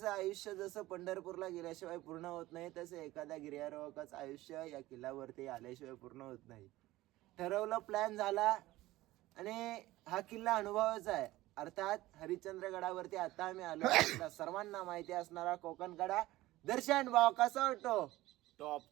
आयुष्य जसं पंढरपूरला गेल्याशिवाय पूर्ण होत नाही, तसं एखाद्या गिर्यारोहकाचं आयुष्य या किल्ल्यावरती आल्याशिवाय पूर्ण होत नाही. ठरवलं, प्लॅन झाला आणि हा किल्ला अनुभवाचा आहे. अर्थात हरिश्चंद्रगडावरती आता आम्ही आलो. सर्वांना माहिती असणारा कोकणकडा. दर्शन भाव कसा वाटतो?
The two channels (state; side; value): quieter; left; 17.4 dB